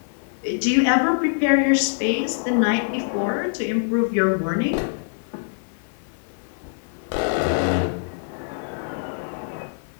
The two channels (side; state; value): right; silent; digital silence